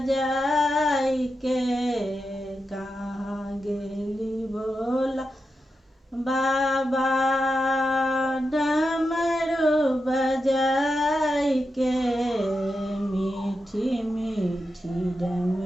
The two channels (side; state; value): both; normal; correlation 0.88